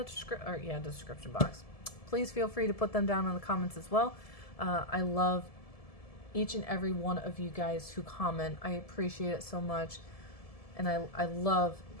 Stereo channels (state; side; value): late; right; 1.7 ms